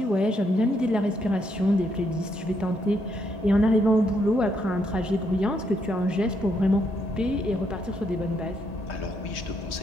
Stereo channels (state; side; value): normal; both; correlation 0.75